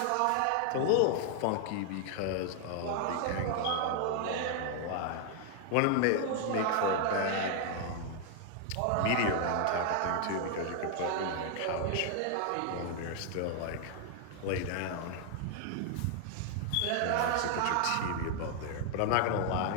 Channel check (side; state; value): both; different; correlation 0.00